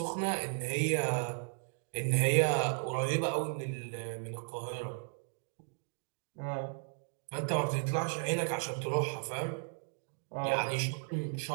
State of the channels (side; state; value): left; silent; 54 dB below the other